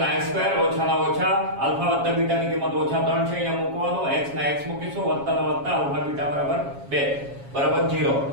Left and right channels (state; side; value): late; left; 7.3 ms